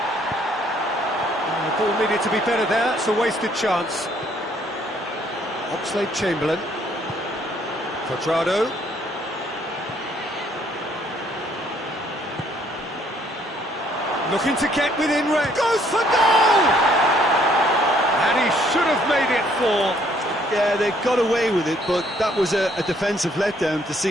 The ball needed to be better there. It's a wasted chance. Oxlade-Chamberlain. Quadrado. Looking to get within range. Goes for goal! And he should have made it four. Yeah, they got away with it, but that was a defensive letdown to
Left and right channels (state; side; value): normal; both; correlation 0.65